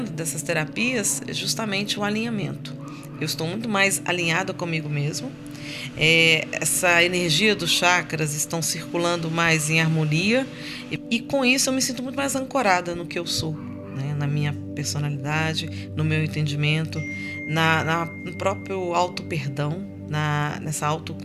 dessas terapias é justamente o alinhamento. Eu estou muito mais alinhada comigo mesmo. Essa energia dos chakras estão circulando mais em harmonia e com isso eu me sinto muito mais ancorada no que eu sou, né? Na minha personalidade, no meu entendimento, no próprio auto-perdão, nessa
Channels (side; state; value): both; identical; correlation 1.00